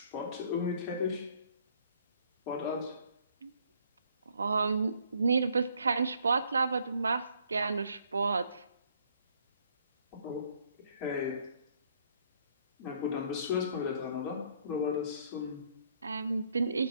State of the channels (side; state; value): both; inverted; correlation -0.65